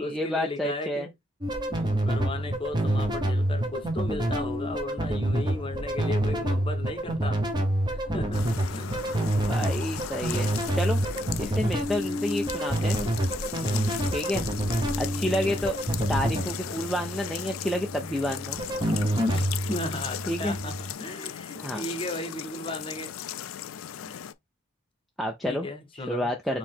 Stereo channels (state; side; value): normal; both; correlation 0.75